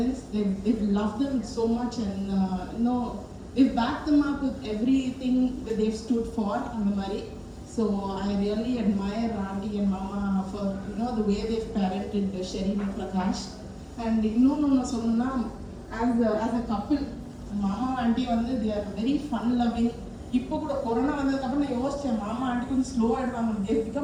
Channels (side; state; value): both; identical; correlation 1.00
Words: They've loved them so much, and they've backed them up with everything that they've stood for in the Mari. So I really admire Auntie and Mama for the way they've parented Sherin and Prakash. And as a couple, Mama and Auntie they are very fun loving. இப்போ கூட corona வந்ததுக்கப்புறம் நான் யோசிச்சேன், மாமா aunty கொஞ்சம் slow ஆகிடுவாங்க. they